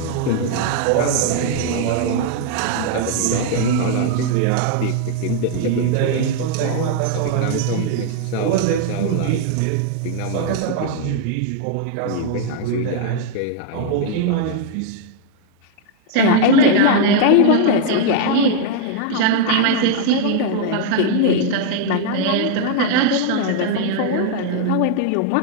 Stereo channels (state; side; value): different; both; correlation 0.00